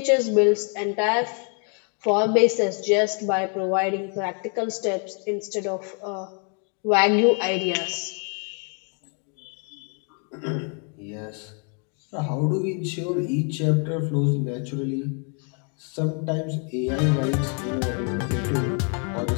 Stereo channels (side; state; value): right; quieter; 39.9 dB